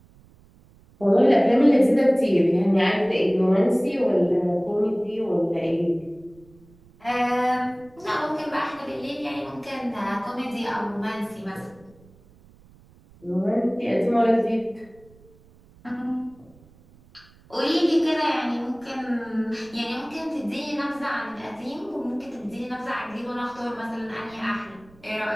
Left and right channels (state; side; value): noise; right; rumble, 27 dB below the sound